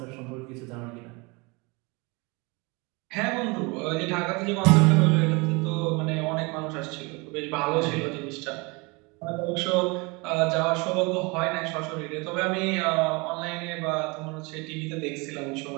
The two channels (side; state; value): left; quieter; 27.4 dB